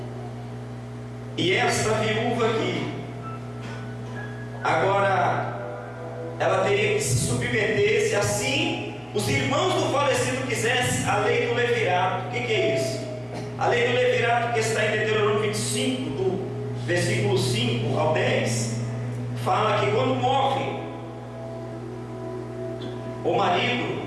E essa viúva aqui, agora, ela teria que se submeter, se assim os irmãos do falecido quisessem, a lei do levirato. O que é isso? A lei do levirato, que está em Deuteronômio 25, do versículo 5 ao 10, fala que quando morre o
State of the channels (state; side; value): identical; both; correlation 1.00